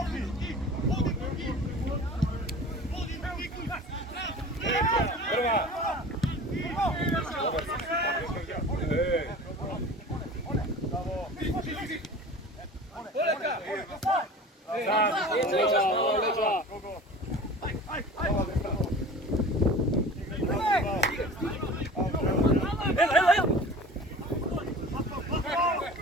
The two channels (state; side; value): normal; both; correlation 0.39